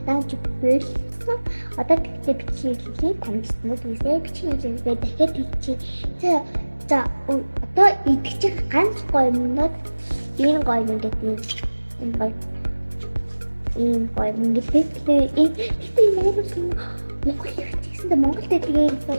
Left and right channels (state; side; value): inverted; both; correlation -1.00